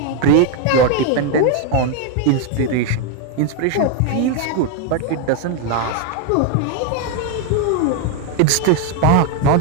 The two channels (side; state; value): both; different; correlation 0.01